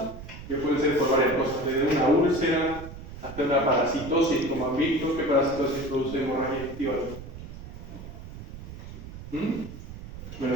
que pueden ser por varias cosas, desde una úlcera hasta una parasitosis, como han visto. ¿Qué parasitosis produce hemorragia digestiva alta? Me lo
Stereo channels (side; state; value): right; noise; rumble, 12 dB below the sound